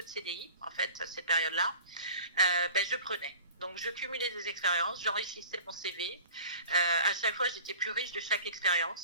de CDI, en fait, cette période-là, je prenais. Donc, je cumulais des expériences, j'enrichissais mon CV. À chaque fois, j'étais plus riche de chaque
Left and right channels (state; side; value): inverted; both; correlation -0.42